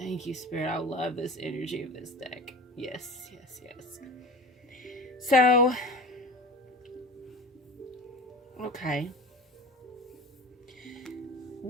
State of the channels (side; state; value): both; normal; correlation 0.36